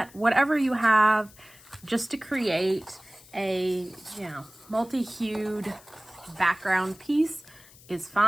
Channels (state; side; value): noise; left; hiss, 23 dB below the sound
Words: Whatever you have, just to create a, you know, multi-hued background piece is